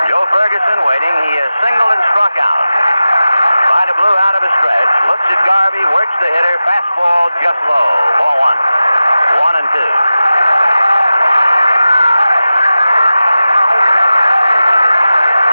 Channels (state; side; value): inverted; both; correlation -0.95